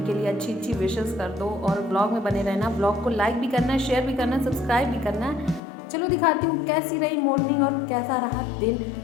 के लिए अच्छी अच्छी विशेस कर दो। और ब्लॉग में बने रहना। ब्लॉग को लाइक भी करना है, शेयर भी करना है, सब्सक्राइब भी करना है। चलो दिखाती हूँ कैसी रही मॉर्निंग और कैसा रहा दिन,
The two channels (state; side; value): drops out; right; at 5.6 s